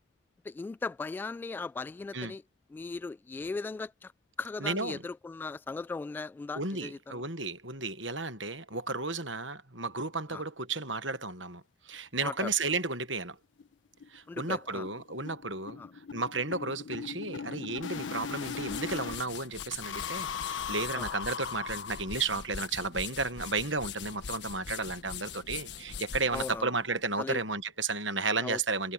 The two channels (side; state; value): both; normal; correlation 0.03